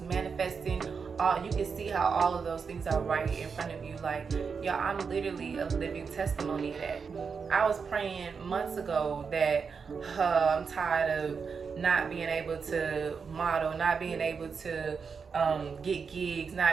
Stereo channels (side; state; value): left; quieter; 5.7 dB